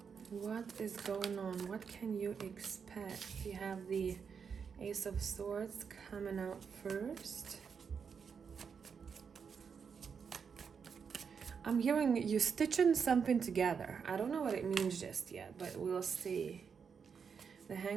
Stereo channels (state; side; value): quieter; left; 6.3 dB